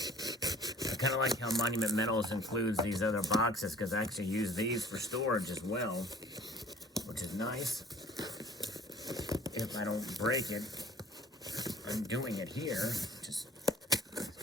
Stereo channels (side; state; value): both; normal; correlation 0.50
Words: I kind of like how Monument Metals includes these other boxes because I actually use these for storage as well, which is nice. If I don't break it, I'm doing it here. Just